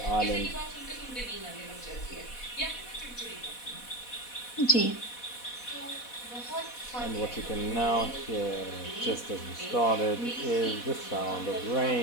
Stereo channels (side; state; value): right; late; 4.1 ms